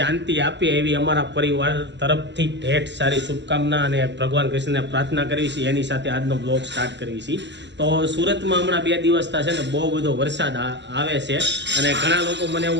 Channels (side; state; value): left; late; 0.52 ms